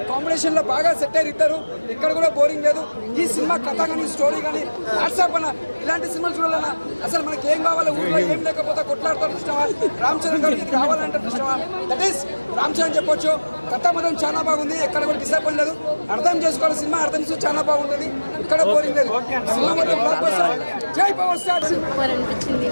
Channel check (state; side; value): inverted; both; correlation -1.00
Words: కాంబినేషన్ లో బాగా సెట్ అయ్యి ఇద్దరు. ఇక్కడ కూడా బోరింగ్ లేదు. ఈ సినిమా కథ కానీ స్టోరీ కానీ వాట్సాప్ అన్న ఇలాంటి సినిమాలు చూడాలన్నా అసలు మనకి ఏం కావాలి, ఊళ్ళో ఏం లేకపోతే కొట్లాడతారు ఇష్టమా, రామ్ చరణ్ గారికి ఇది కావాలంటే ఇష్టమా, దట్ ఈస్ రామ్ చరణ్ చెప్పొచ్చు. కథ మాత్రం చాలా బాగుంది. ఎక్కడ కూడా డిసప్పాయింట్ లేదు. అర్థం చేసుకోవాలి సినిమా, అర్థం చేసి చాలా బాగుంటుంది. ఇక్కడ బోరింగ్ లేదు. సినిమా మాత్రం బ్లాక్ బస్టర్. జై పవర్ స్టార్.